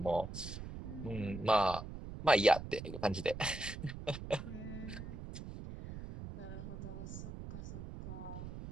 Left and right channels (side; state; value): right; noise; rumble, 9 dB below the sound